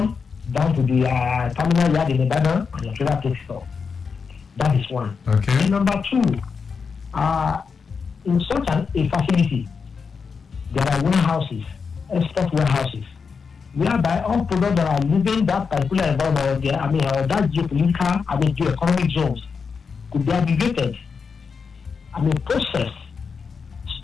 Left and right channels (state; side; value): quieter; right; 5.5 dB